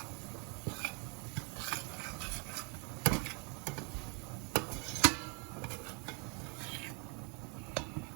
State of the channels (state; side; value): quieter; left; 35.3 dB